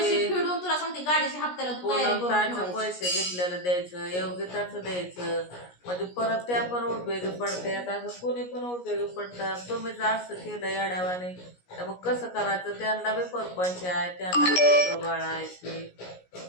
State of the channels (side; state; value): right; late; 17 ms